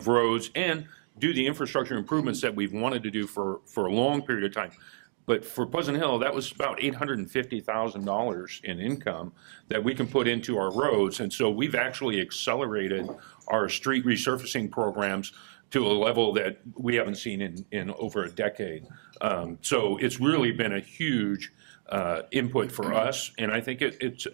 roads and do the infrastructure improvements that we've wanted to do for a long period of time. But for Pleasant Hill, that was about $850,000 in income that we can put into our roads. And so we've actually accelerated our street resurfacing programs to a level that we haven't seen in over a decade. So it's really been a huge input for us, and I think it's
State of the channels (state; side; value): silent; left; digital silence